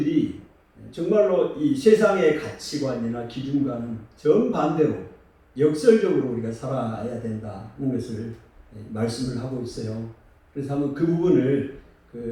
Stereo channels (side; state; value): both; identical; correlation 1.00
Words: 정말로 이 세상의 가치관이나 기준과는 정반대로 역설적으로 우리가 살아야 된다는 것을 말씀을 하고 있어요. 그래서 한번 그 부분을